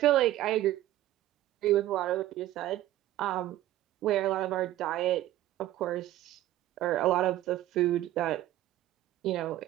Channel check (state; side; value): quieter; left; 14.1 dB